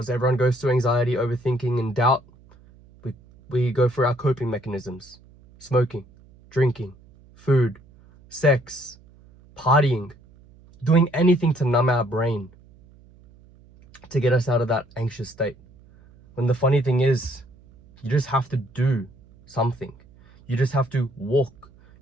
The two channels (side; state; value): right; noise; hum, 26 dB below the sound